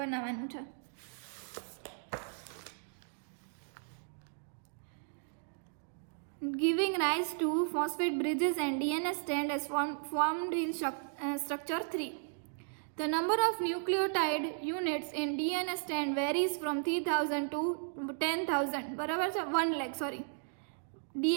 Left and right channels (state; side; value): silent; left; digital silence